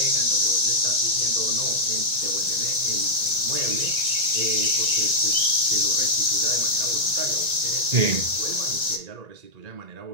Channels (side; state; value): left; late; 1.9 ms